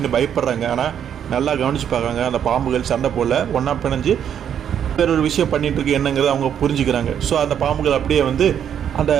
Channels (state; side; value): quieter; left; 9.0 dB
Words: பயப்படுறாங்க. ஆனால் நல்லா கவனித்து பார்க்குறாங்க, அந்த பாம்புகள் சண்டை போடல, ஒன்றா பிணைஞ்சு வேற ஒரு விஷயம் பண்ணிட்டு இருக்கு என்னங்கிறத அவங்க புரிஞ்சுக்கிறாங்க. ஸோ அந்த பாம்புகள் அப்படியே வந்து அந்த